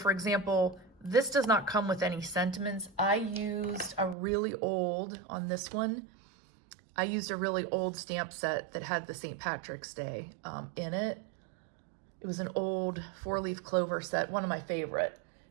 example, this does not come with any sentiments. I used a really old, on this one, I used a really old stamp set that had the St. Patrick's Day in it. It was an old 4-leaf clover set, one of my favorite,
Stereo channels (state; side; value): drops out; left; at 4.2 s